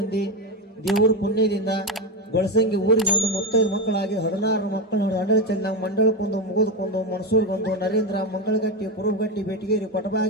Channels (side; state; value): both; normal; correlation 0.14